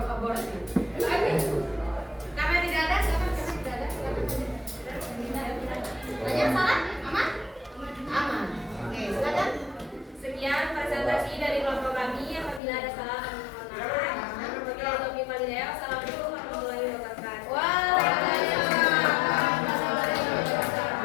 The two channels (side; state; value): right; drops out; at 12.6 s